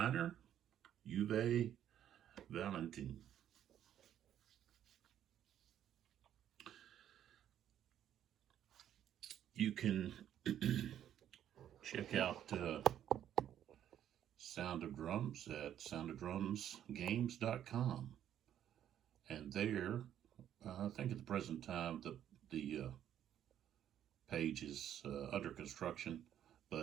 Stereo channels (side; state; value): left; quieter; 10.6 dB